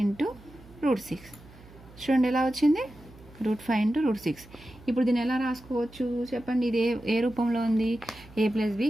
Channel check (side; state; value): right; noise; hum, 22 dB below the sound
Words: ఇంటూ √6. చూడండి ఎలా వచ్చింది. √5 ఇంటూ √6. ఇప్పుడు దీన్ని ఎలా రాసుకోవచ్చు చెప్పండి. ఇది ఏ రూపంలో ఉంది. a + b